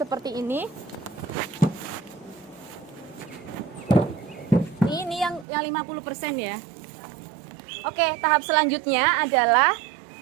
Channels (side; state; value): left; drops out; at 5.5 s